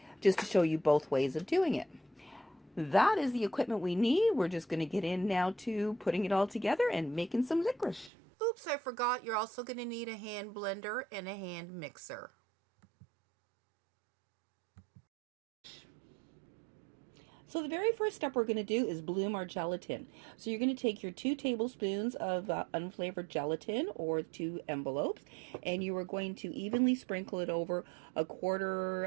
just to show you both ways of doing it. that is the equipment we need. We're just going to get in now to putting it all together and making some licorice. Oops, I forgot. You're also going to need a hand blender and a hand mixer. So the very first step we're going to do is bloom our gelatin. So you're going to take your 2 tablespoons of unflavored gelatin, or 2 envelopes, and you are going to evenly sprinkle it over a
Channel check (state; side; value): drops out; left; at 8.1 s